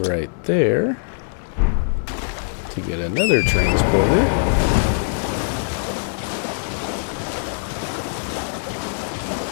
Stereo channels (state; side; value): silent; right; digital silence